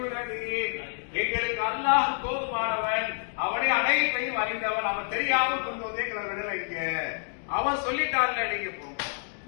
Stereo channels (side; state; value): right; silent; 59 dB below the other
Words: எங்களுக்கு அல்லாஹ் போதுமானவன், அவனே அனைத்தையும் அறிந்தவன், அவன் தெரியாம கொண்டு வந்து எங்களை விடலைங்க. அவன் சொல்லிட்டான்ல நீங்க